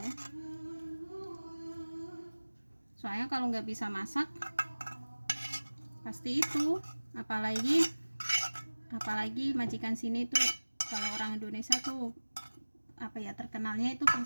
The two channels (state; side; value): inverted; both; correlation -1.00